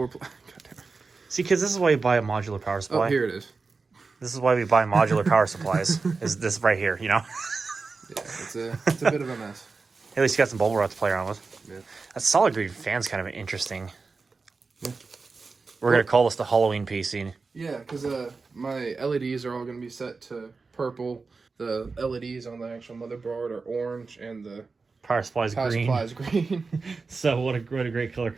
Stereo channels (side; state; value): left; quieter; 4.3 dB